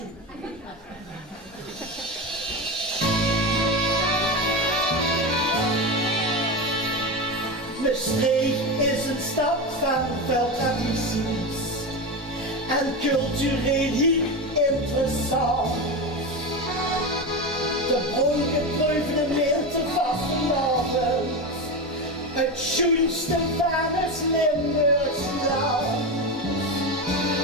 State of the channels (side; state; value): both; normal; correlation 0.19